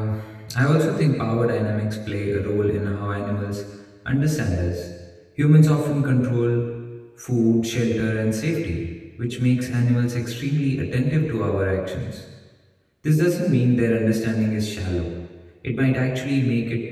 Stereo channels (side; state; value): both; identical; correlation 1.00